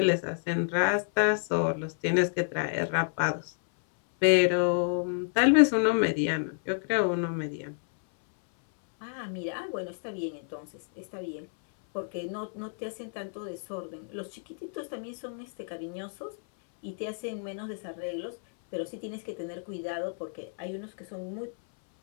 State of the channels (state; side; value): silent; right; 58 dB below the other